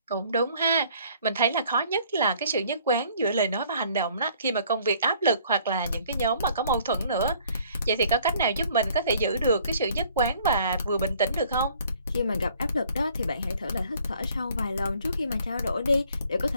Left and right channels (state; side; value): inverted; both; correlation -0.58